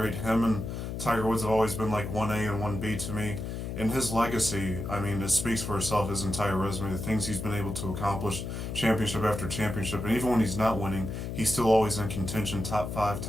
Him and Tiger Woods have always been 1A and 1B to me. And his legacy, I mean, it speaks for itself, his entire resume, the things he's been able to accomplish, championship after championship. And even when he's not winning, he's still always in contention, top 5,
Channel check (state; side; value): noise; left; hum, 5 dB below the sound